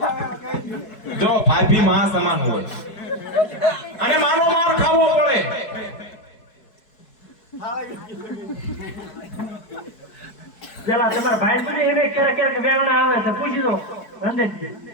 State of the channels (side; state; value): right; late; 4.7 ms